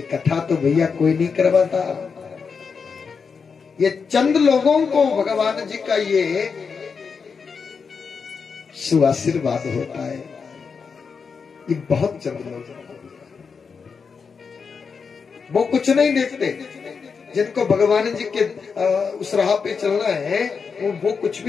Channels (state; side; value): quieter; right; 5.6 dB